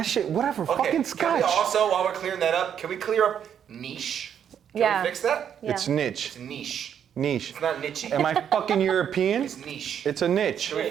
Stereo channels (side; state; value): left; quieter; 8.7 dB